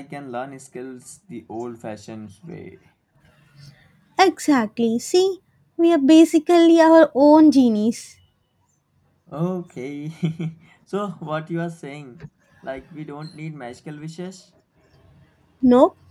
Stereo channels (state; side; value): identical; both; correlation 1.00